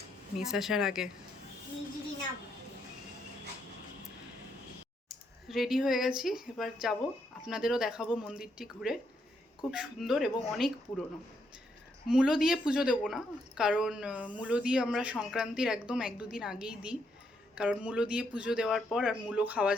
মিস আসার আগে। রেডি হয়ে গেছি, এবার যাব। আপনাদেরও দেখাবো মন্দিরটি ঘুরে। খুব সুন্দর এবং অনেক পুরনো। মূলো দিয়ে পুজো দেবো না, কারণ মূলো দিয়ে আমরা সংক্রান্তির একদম 1-2 দিন আগেই দিই, কারণ মূলো দিয়ে পুজো দেওয়ার পর আর মূলো খাওয়া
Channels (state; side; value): normal; both; correlation 0.76